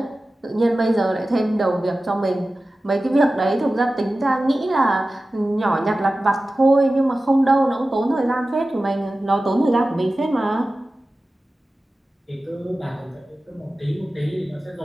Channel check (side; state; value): both; normal; correlation 0.95